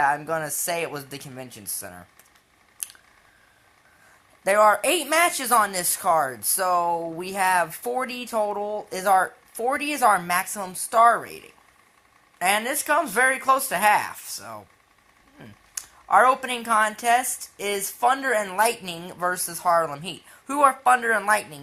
I'm gonna say it was the Convention Center. There are 8 matches on this card, so we have 40 total. 40 is our maximum star rating. And this comes very close to half, so... Our opening contest is Thunder and Lightning versus Harlem Heat. Who are Thunder and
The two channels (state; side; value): identical; both; correlation 1.00